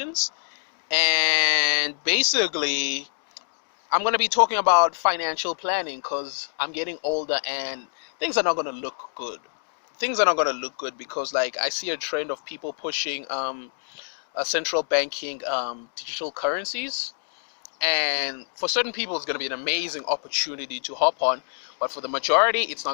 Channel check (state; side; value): silent; right; 61 dB below the other